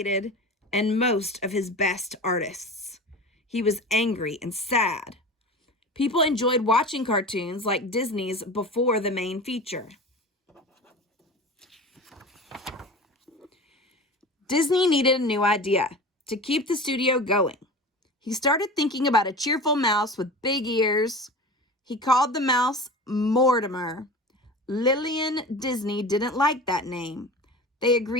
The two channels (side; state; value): both; normal; correlation 0.33